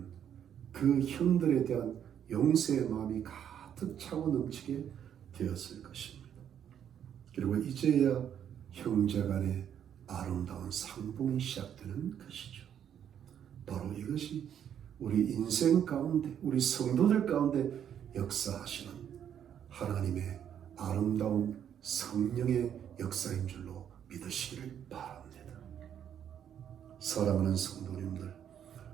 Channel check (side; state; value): left; quieter; 9.2 dB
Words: 그 형들에 대한 용서의 마음이 가득 차고 넘치게 되었을 것입니다. 그리고 이제야 형제간의 아름다운 상봉이 시작되는 것이죠. 바로 이것이 우리 인생 가운데, 우리 성도들 가운데 역사하시는 하나님의 아름다운 성령의 역사인 줄로 믿으시기를 바랍니다. 사랑하는 성도님들,